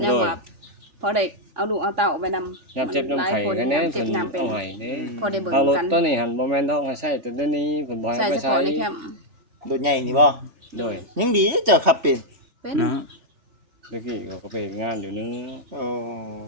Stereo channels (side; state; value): left; late; 3.4 ms